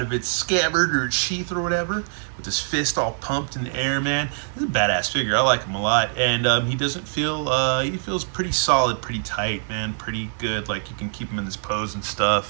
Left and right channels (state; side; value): silent; left; 58 dB below the other